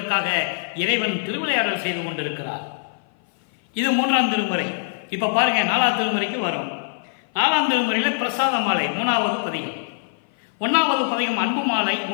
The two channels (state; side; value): silent; right; 56 dB below the other